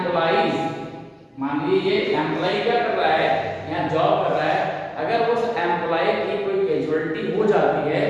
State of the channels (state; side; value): identical; both; correlation 1.00